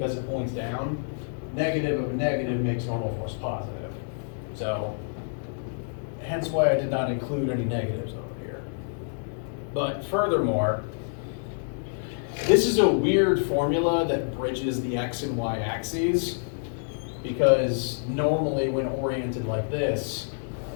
it points down, negative of a negative makes normal force positive. So, hence why I did not include any negatives over here. But furthermore, this is a weird formula that bridges the x and y axes, because normally when oriented like this,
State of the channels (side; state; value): right; silent; digital silence